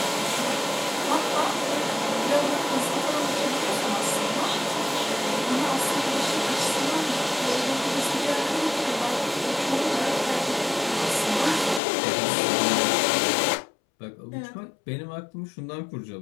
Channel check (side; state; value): right; drops out; at 11.8 s